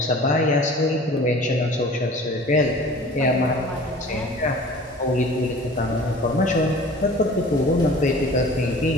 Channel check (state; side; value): normal; both; correlation 0.44